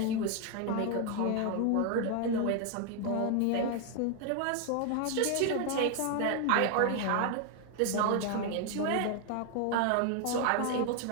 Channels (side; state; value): both; different; correlation 0.01